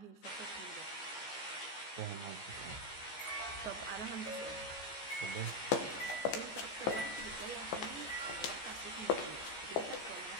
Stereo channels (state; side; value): late; right; 15 ms